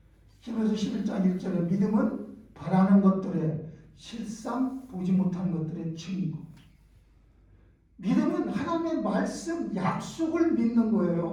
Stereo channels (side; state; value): both; identical; correlation 1.00